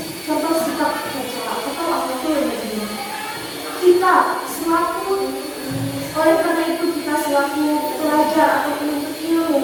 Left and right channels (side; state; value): both; identical; correlation 1.00